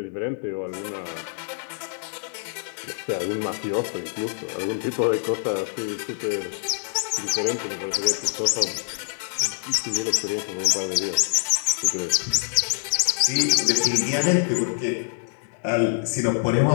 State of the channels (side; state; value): right; silent; digital silence